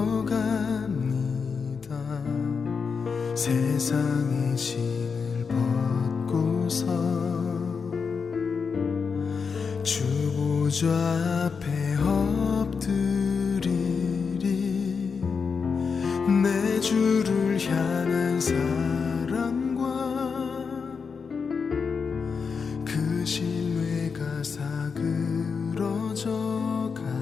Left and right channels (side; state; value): right; quieter; 5.6 dB